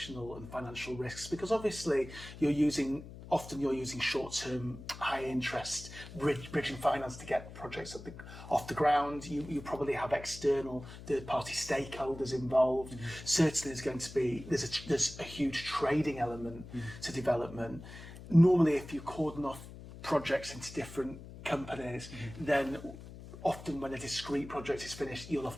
and financial risks, because obviously often you're using short-term, high-interest bridging finance to get projects off the ground. You probably have external third-party stakeholders involved. Certainly, there's a huge trading element to development. Normally, if you cordon off projects into different companies, then often when a discrete project is finished, you'll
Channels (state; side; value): noise; left; hum, 14 dB below the sound